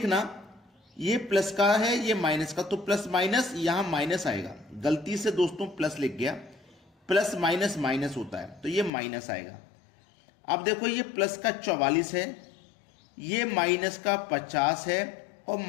ये प्लस का है, ये माइनस का, तो प्लस माइनस यहां माइनस आएगा। गलती से दोस्तों प्लस लिख गया, प्लस माइनस माइनस होता है, तो ये माइनस आएगा। अब देखो, ये प्लस का 44 है, ये माइनस का 50 है और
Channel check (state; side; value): drops out; right; at 8.9 s